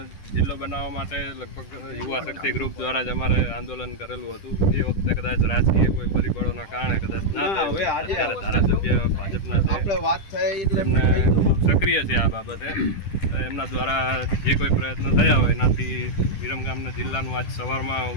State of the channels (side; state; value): right; late; 10 ms